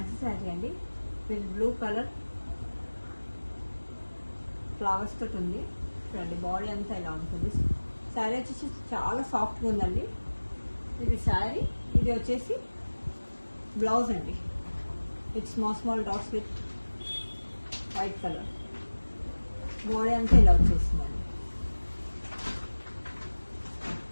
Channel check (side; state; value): both; inverted; correlation -1.00